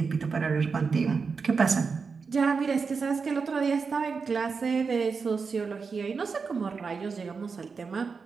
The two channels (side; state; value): left; quieter; 5.1 dB